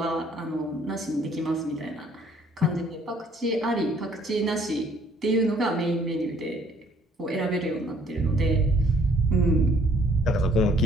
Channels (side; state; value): both; normal; correlation 0.61